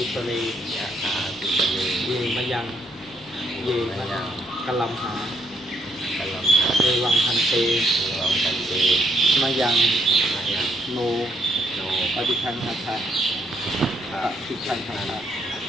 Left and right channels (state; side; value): normal; both; correlation 0.72